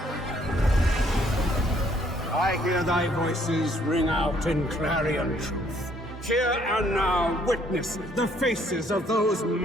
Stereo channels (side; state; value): both; normal; correlation 0.65